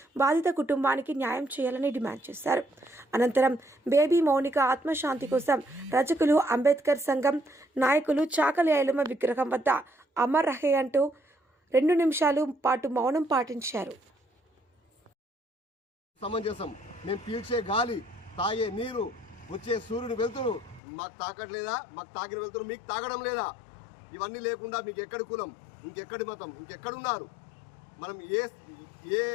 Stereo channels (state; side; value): drops out; right; at 20.8 s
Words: బాధిత కుటుంబానికి న్యాయం చేయాలని డిమాండ్ చేశారు. అనంతరం బేబీ మౌనిక ఆత్మశాంతి కోసం రజకులు అంబేద్కర్ సంఘం నాయకులు చాకలి ఐలమ్మ విగ్రహం వద్ద అమర్ రహే అంటూ 2 నిమిషాలు పాటు మౌనం పాటించారు. సమంజసం. మేము పీల్చే గాలి, తాగే నీరు, వచ్చే సూర్యుని వెళ్తురు మాకు తాకట్లేదా? మాకు తాకిన వెళ్తురు మీకు తాగడం లేదా? ఇవన్నీ లేకుండా మీకు ఎక్కడి కులం, ఇంకెక్కడి మతం, ఇంకెక్కడున్నారు? మనం ఏ